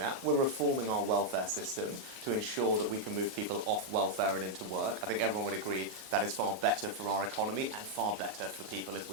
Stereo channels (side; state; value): left; late; 38 ms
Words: We're reforming our welfare system to ensure that we can move people off welfare and into work. I think everyone would agree that is far better for our economy and far better for people if